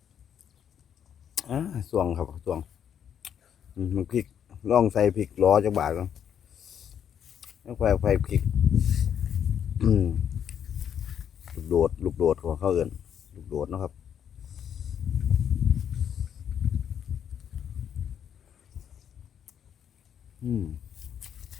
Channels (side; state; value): right; quieter; 8.8 dB